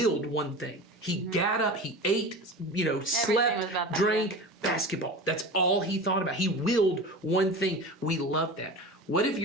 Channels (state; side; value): normal; both; correlation 0.32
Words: one thing. He got up, he ate, was about slept, that, drank, basketball. That's all he thought about. He willed one thing. We love that. What if